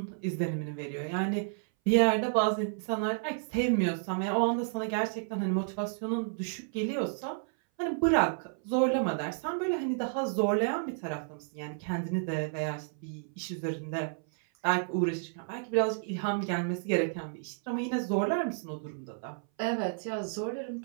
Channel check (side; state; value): left; silent; 57 dB below the other